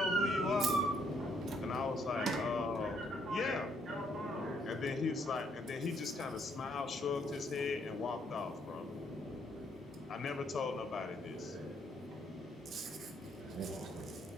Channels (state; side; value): normal; both; correlation 0.70